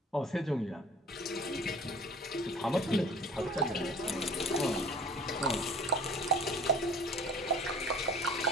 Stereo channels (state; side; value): normal; both; correlation 0.46